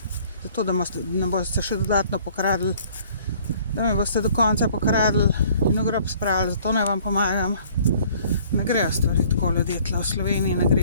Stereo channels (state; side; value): inverted; both; correlation -0.56